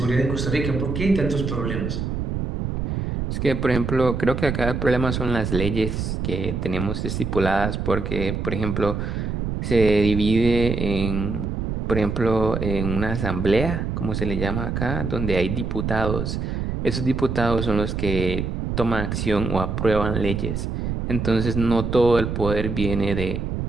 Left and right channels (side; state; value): right; noise; rumble, 2 dB below the sound